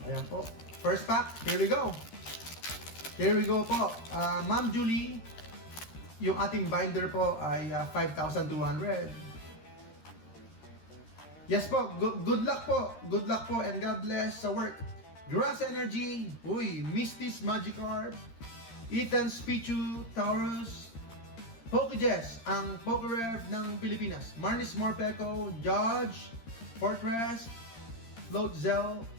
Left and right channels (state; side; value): late; right; 13 ms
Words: Ayan po. First pack, here we go. Here we go po. Ma'am Julie, yung ating binder po ay 5,200. Yes po, good luck po. Good luck po and God bless sa work. Grass Energy, uy, Misty's Magikarp, Ethan's Pichu, Taurus, PokeJess, ang PokeRev ng Pilipinas. Marnis Morpeko, Judge, Fortress, Floatzel,